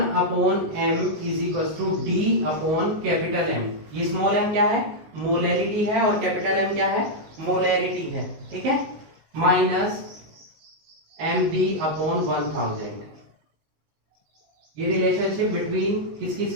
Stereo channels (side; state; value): left; late; 19 ms